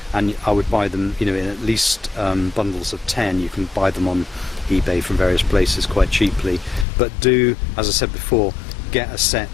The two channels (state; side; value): drops out; right; at 6.9 s